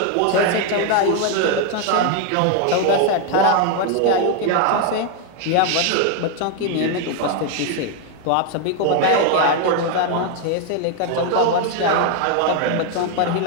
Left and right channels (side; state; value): both; different; correlation 0.01